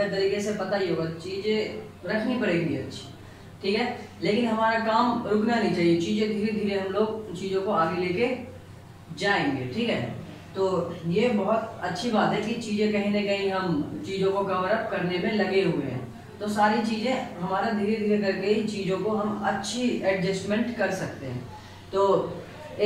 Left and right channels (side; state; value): both; identical; correlation 1.00